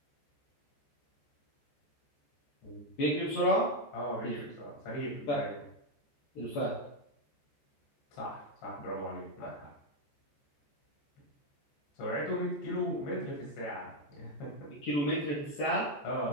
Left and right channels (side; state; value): right; late; 14 ms